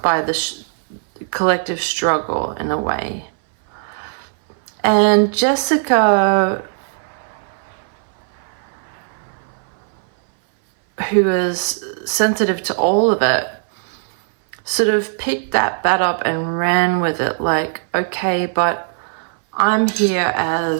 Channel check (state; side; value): silent; left; 61 dB below the other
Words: by the collective struggle in a way. And Jessica, who is sensitive to all of it, sort of picked that up and ran with it, like, okay, but I'm here